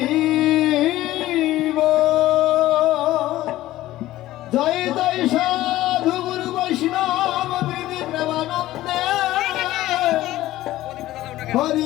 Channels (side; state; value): right; quieter; 15.5 dB